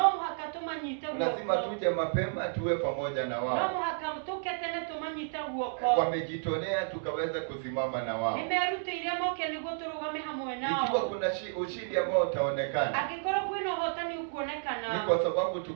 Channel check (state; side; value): silent; left; 57 dB below the other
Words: muhaka tumanyite guoko. Lazima tuje mapema tuwe pamoja na wao. No muhaka tuke tene tumanyite guoko. Wamejitolea tukaweza kusimama na wao. Nimerutĩire moke nĩguo tũrũgame hamwe nao. Ikiwa kuna ushindi ambao utaonekana, angĩkorwo kwĩna ũhotani ũkuonekana, ni kwa sababu